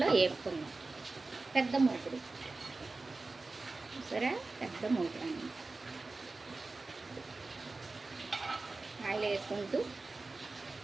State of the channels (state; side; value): quieter; left; 3.5 dB